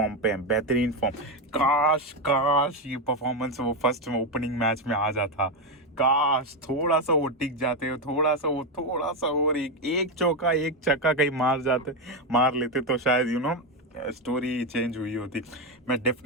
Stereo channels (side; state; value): both; normal; correlation 0.09